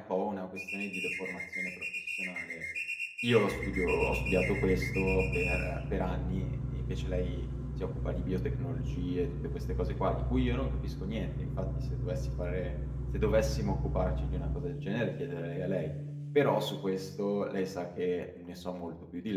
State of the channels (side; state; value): both; identical; correlation 1.00